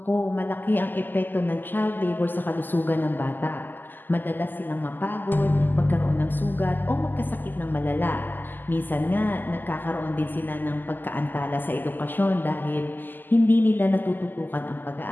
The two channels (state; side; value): late; right; 0.089 ms